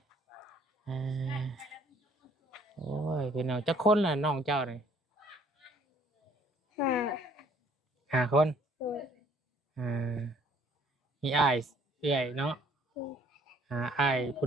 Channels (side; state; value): both; normal; correlation 0.60